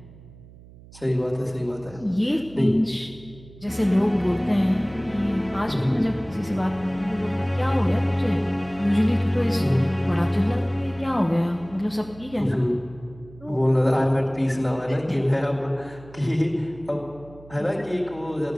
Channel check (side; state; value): right; noise; hum, 21 dB below the sound